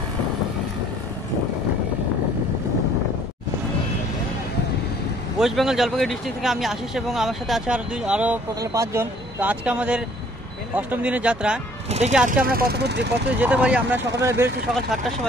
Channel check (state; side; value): normal; both; correlation 0.58